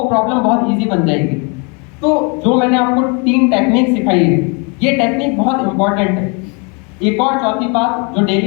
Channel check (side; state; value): right; quieter; 33.4 dB